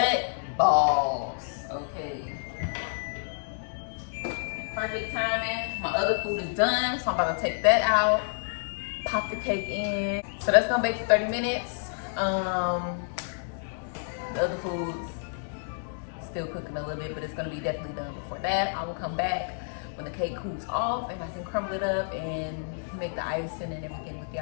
Balls. Okay. Perfect timing. My other food is done, so I'm about to take that out, pop the cake in. So that's gonna bake for 30 minutes. The other food's still cooking a little bit, but it's gonna be definitely done before that. I will come back when the cake cools off and I can crumble it up and make the icing and everything with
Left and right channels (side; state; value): right; silent; digital silence